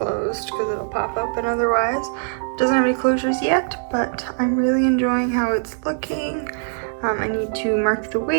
because it'll pop open otherwise. It doesn't have any closures yet, but I'm really enjoying how it's looking. I need to mark the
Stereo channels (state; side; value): silent; left; 58 dB below the other